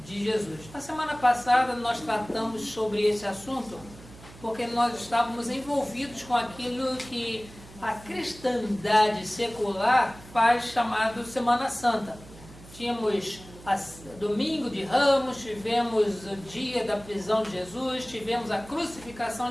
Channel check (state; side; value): noise; right; hum, 19 dB below the sound